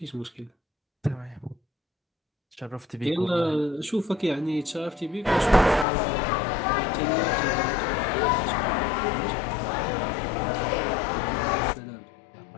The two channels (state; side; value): drops out; right; at 5.9 s